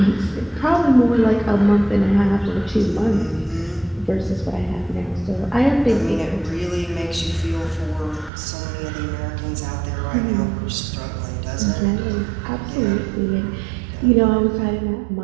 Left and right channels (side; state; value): left; drops out; at 8.3 s